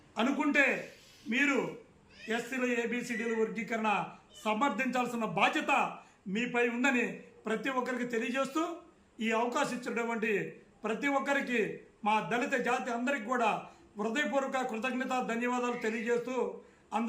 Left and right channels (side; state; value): both; identical; correlation 1.00